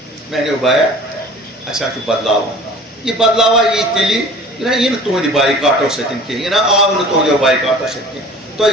میں نے بایا اچھا بدلاو یہ بدلاوا یہ تیلی یہ تہند بائیکاٹو ستن کی یہ آو نا تہندو بائیکاٹو ستن تھی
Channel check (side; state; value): both; normal; correlation 0.44